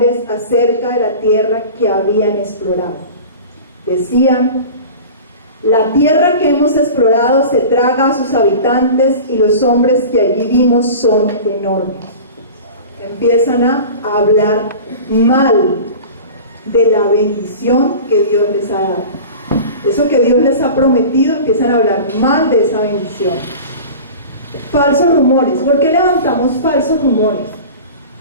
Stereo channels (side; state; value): both; inverted; correlation -0.36